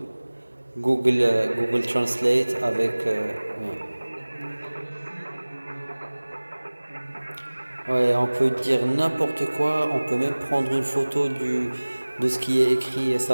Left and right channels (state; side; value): inverted; both; correlation -1.00